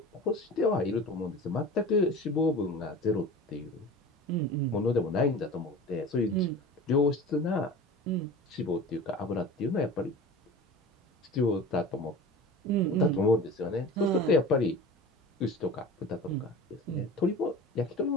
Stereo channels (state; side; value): normal; both; correlation 0.36